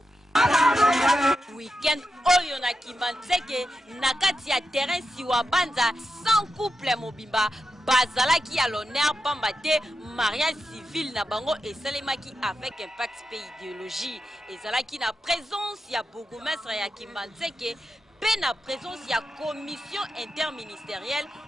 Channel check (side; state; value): both; normal; correlation 0.88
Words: Weekend oyo na Kimanzeke na kati ya terrain siwa banza 100 couple mobimba bazalaki à l'honneur pambate mariage civil na bango esalemaki avec impact pays idéologie ezalaki na présence ya bourgmestre ya Kimanzeke pe na présence ya commission interministérielle